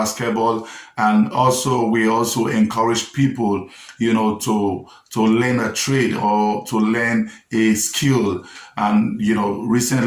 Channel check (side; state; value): both; identical; correlation 1.00